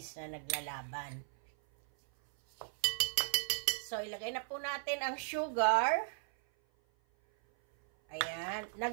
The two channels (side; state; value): left; silent; 53 dB below the other